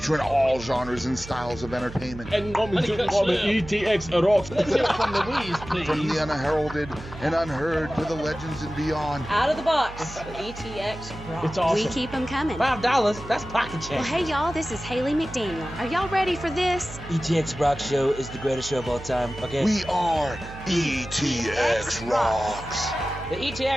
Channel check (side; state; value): right; noise; hum, 14 dB below the sound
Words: all genres and styles of entertainment. And coming to the ETX ROCKS. Let's hear it from Louise, please. From the unheralded and unheard to the legends and beyond. Out of the box with ETX ROCKS. It's awesome. We keep them coming. $5, that's pocket change. Well, hey, y'all, this is Haley McDaniel. Are y'all ready for this? ETX ROCKS Show is the greatest show of all time, okay? We are ETX ROCKS. The